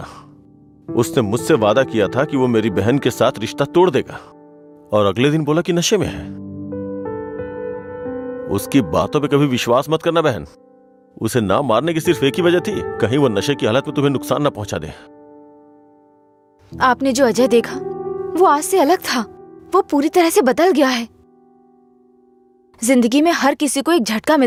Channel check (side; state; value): both; identical; correlation 1.00